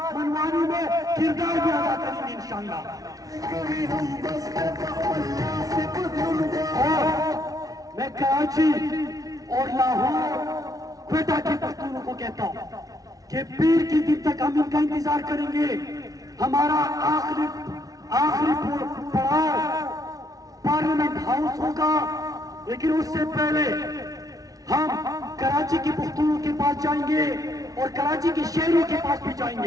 منوانے میں کردار بھی ادا کریں گے انشاءاللہ. میں کراچی اور لاہور کوئٹہ کے پختونوں کو کہتا ہوں کہ پیر کی دن تک ہم ان کا انتظار کریں گے. ہمارا آخری پڑاؤ پارلیمنٹ ہاؤس ہوگا, لیکن اس سے پہلے ہم کراچی کے پختونوں کے پاس جائیں گے اور کراچی کے شہروں کے پاس بھی جائیں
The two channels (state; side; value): late; left; 0.18 ms